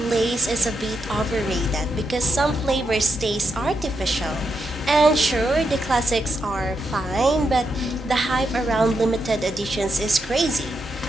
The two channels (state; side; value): normal; both; correlation 0.83